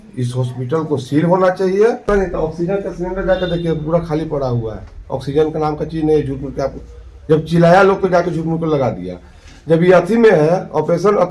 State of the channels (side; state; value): both; identical; correlation 1.00